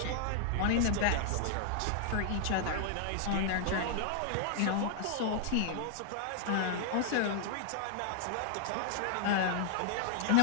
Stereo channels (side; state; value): both; different; correlation -0.01